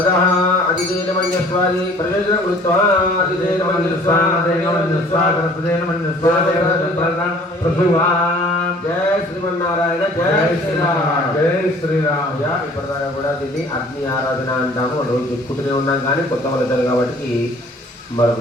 अतिदेन मन्यस्वादि प्रयोजनं कृत्वा अतिदेन मन्यस्वा जय श्रीमन्नारायण जय శ్రీరామ్ జై శ్రీరామ్ ఇప్పటిదాకా కూడా దీన్ని అగ్ని ఆరాధన అంటాము రోజు చెప్పుకుంటూనే ఉన్నాం కానీ కొత్త వాళ్ళు కాబట్టి మరొక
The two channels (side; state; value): both; normal; correlation 0.52